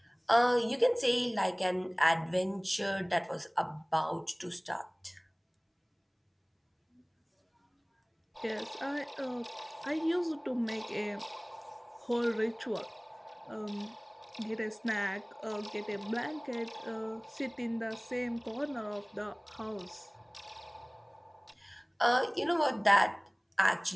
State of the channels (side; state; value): both; identical; correlation 1.00